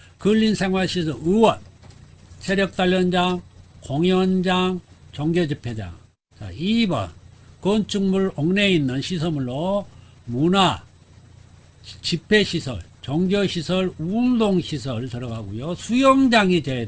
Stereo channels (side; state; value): both; identical; correlation 1.00